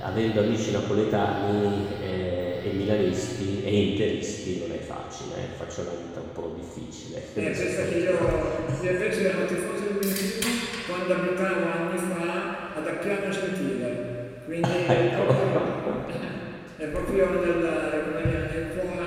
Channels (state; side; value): identical; both; correlation 1.00